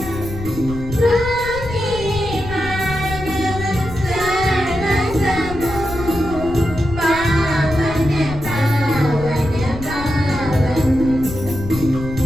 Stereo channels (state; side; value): noise; left; rumble, 10 dB below the sound